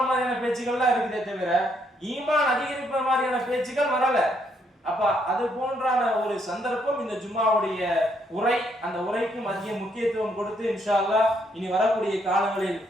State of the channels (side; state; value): both; normal; correlation 0.73